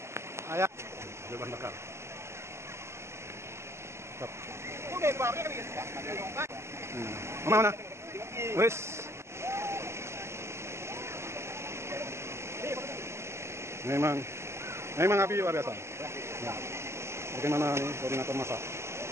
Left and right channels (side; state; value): left; late; 0.13 ms